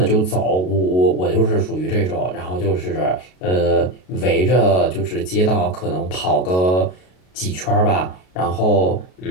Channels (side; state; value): right; late; 33 ms